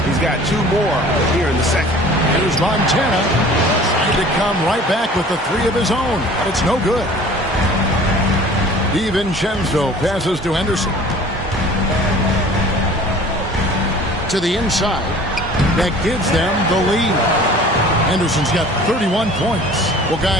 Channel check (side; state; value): both; normal; correlation 0.47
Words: he's got 2 more here in the second. Here's Montana. To come right back with the 3 of his own, but it's no good. DiVincenzo passes to Henderson. To the inside. That gives them the lead. Henderson's got 31 points. Well,